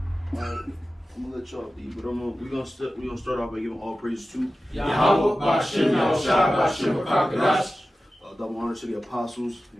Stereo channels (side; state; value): both; normal; correlation 0.95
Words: Alright, I'm gonna let y'all be, but we're gonna start off by giving all praise to Yahweh, Bashem, Yahushua, Bashem, Kakadash. double honor to the apostles